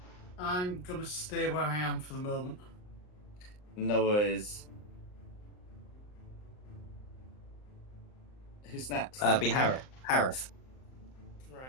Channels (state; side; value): late; right; 39 ms